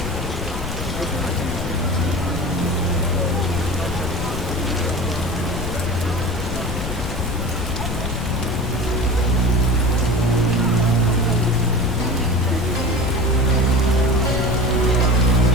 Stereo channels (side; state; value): left; noise; rumble, 7 dB below the sound